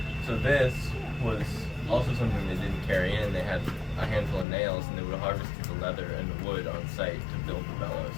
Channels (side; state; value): right; drops out; at 4.5 s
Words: this was also something they didn't carry in. They had a handful of nails, and they would have harvested the leather and the wood on site to build the bellows.